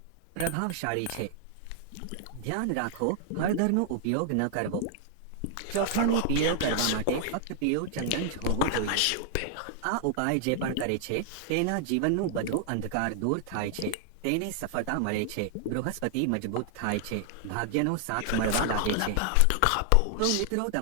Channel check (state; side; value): different; both; correlation 0.00